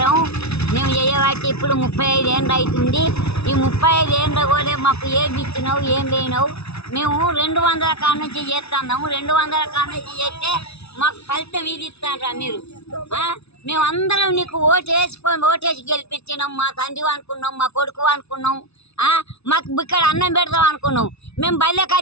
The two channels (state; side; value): late; right; 0.80 ms